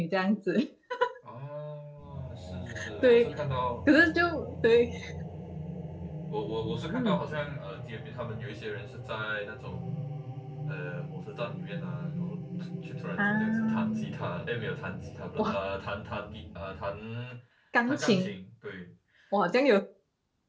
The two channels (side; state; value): both; identical; correlation 1.00